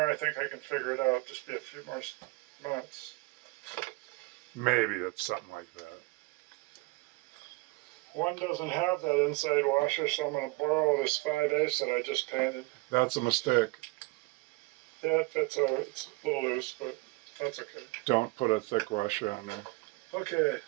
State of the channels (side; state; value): left; quieter; 24.2 dB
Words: I think I can figure it out. Just be a few more months. Maybe it's something like that. One doesn't have that inside washer, so I'm going to borrow this 5/8 that I just painted. That's a mistake. Yeah, it fits out. It's a little loose, but that's okay. Don't put a thick washer on there. Okay,